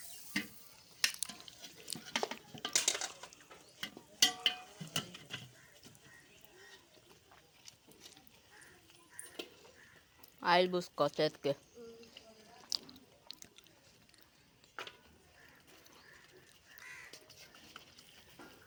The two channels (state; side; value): identical; both; correlation 1.00